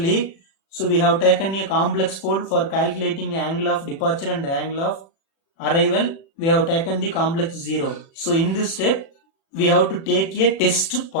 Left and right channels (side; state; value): right; late; 36 ms